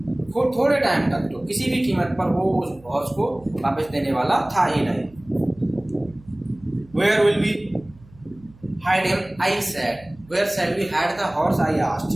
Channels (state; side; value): noise; right; hum, 25 dB below the sound